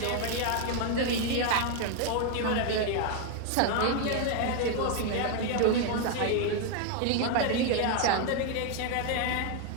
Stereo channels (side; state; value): both; different; correlation 0.01